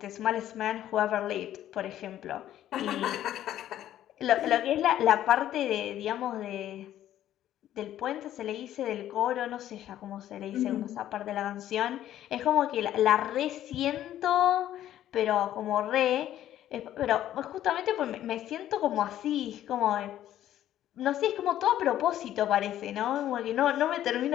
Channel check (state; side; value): quieter; right; 12.2 dB